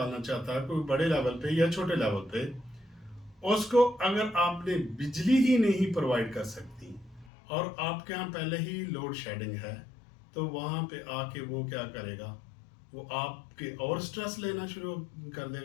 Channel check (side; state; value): right; drops out; at 7.3 s